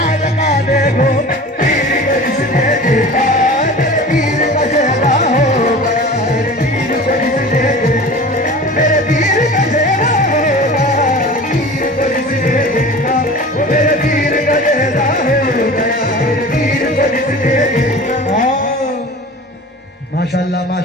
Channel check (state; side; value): normal; both; correlation 0.38